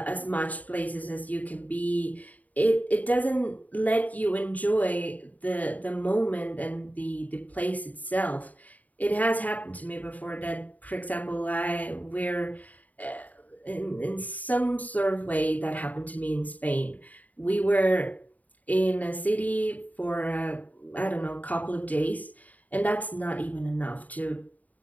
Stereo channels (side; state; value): right; late; 0.074 ms